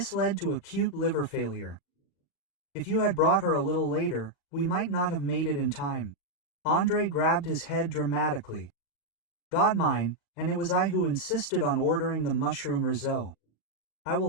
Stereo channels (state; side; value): late; right; 37 ms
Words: led to acute liver failure. If you had brought her a little later, we might not have made it in time. Andrei grabbed his head dramatically. "God mine, and it was I who insisted on ordering the mushroom risotto. I